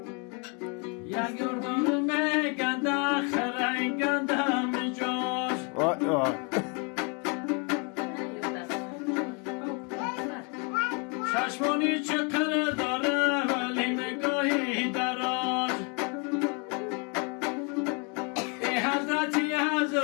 یا گردان میگنده خرنگنده میجاش وای وای چشمانی چقدر داره ولی نگاهی دراز ای حضرتی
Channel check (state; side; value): quieter; right; 34.5 dB